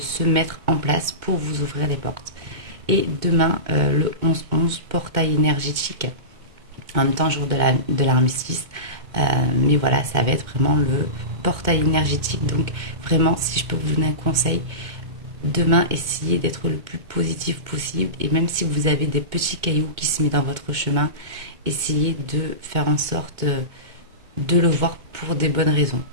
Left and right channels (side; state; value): left; late; 2.1 ms